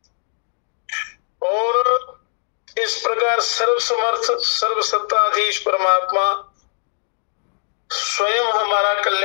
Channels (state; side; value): silent; right; digital silence